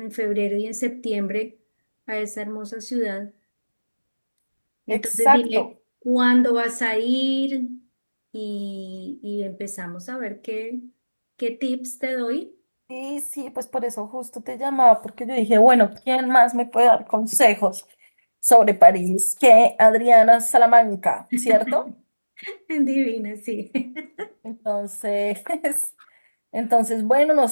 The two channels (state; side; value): inverted; both; correlation -1.00